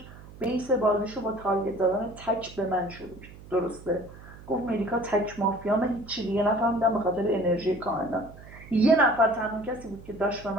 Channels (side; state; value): right; noise; hum, 18 dB below the sound